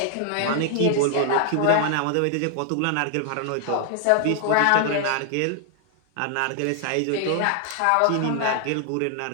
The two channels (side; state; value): both; different; correlation 0.00